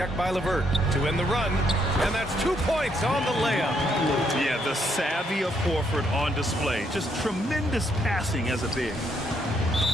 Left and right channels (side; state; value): both; normal; correlation 0.73